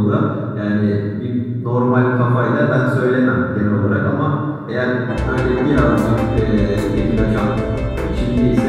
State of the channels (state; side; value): identical; both; correlation 1.00